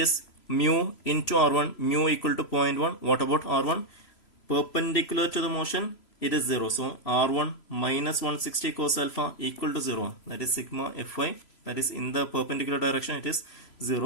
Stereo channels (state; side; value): late; right; 3.0 ms